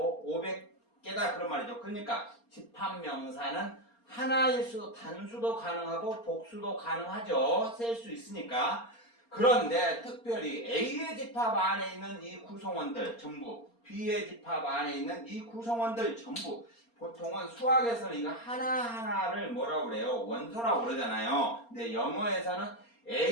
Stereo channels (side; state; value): right; late; 4.3 ms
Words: 500개다 그런 말이죠. 그러니까 집합명사는 하나일 수도 단수도 가능하고 복수도 가능하죠. 셀 수 있으니까. 그런데 특별히 A의 집합 안에 있는 이 구성원들 전부, B의 집합 안에 있는 이 구성원들 전부 보통은 수학에서는 이거 하나하나를 뭐라고 그래요? 원소라고 그러잖아요. 근데 영어에서는